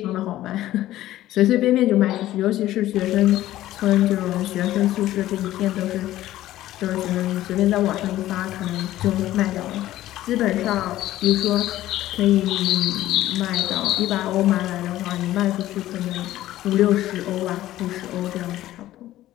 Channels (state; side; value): quieter; right; 14.5 dB